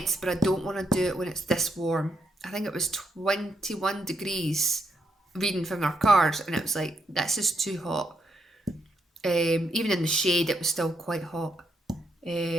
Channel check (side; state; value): both; normal; correlation 0.78